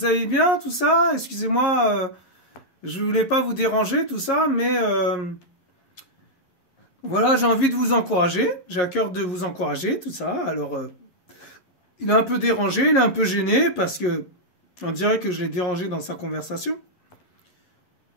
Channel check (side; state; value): right; late; 11 ms